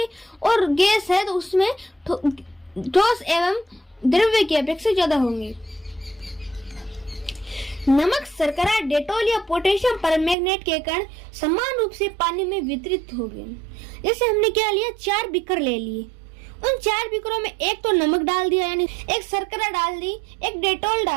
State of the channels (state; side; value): drops out; left; at 10.4 s